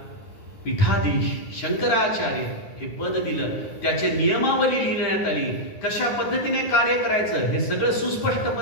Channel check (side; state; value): right; late; 10 ms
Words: पीठाधीश शंकराचार्य हे पद दिलं. त्याचे नियमावली लिहिण्यात आली. कशा पद्धतीने कार्य करायचं हे सगळं सुस्पष्ट